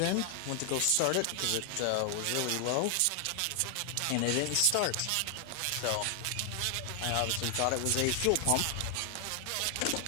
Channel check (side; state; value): both; different; correlation 0.00